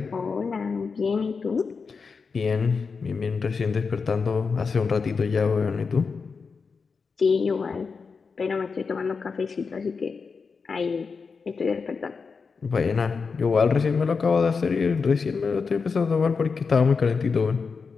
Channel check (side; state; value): right; quieter; 5.1 dB